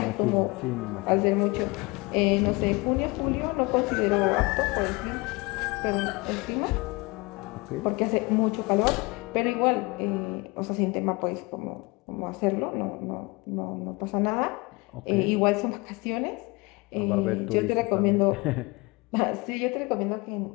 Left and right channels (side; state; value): right; quieter; 25.5 dB